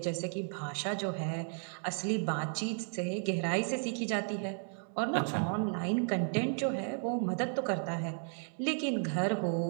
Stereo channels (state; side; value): silent; left; 55 dB below the other